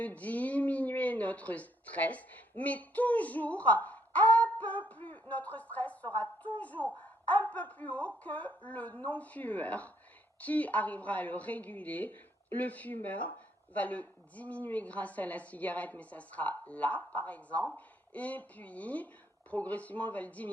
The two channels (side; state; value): both; normal; correlation 0.70